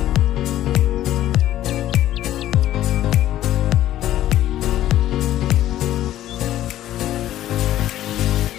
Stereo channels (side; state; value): right; quieter; 13.1 dB